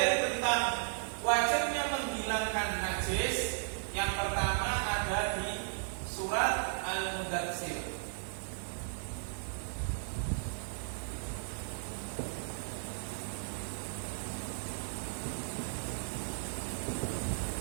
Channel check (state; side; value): silent; left; digital silence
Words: tentang wajibnya menghilangkan najis yang pertama ada di surat Al-Mudatsir.